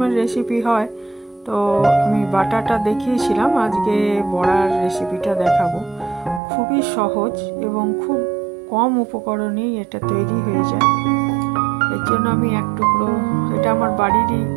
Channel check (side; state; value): left; drops out; at 6.4 s